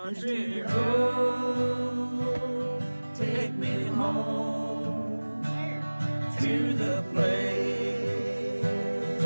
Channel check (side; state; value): both; inverted; correlation -1.00